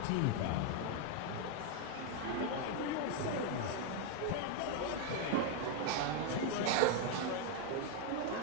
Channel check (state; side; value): different; both; correlation 0.01